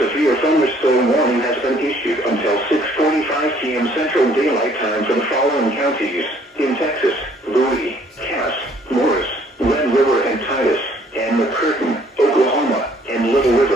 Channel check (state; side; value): normal; both; correlation 0.61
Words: thunderstorm warning has been issued until 6:45 p.m. Central Daylight Time for the following counties in Texas.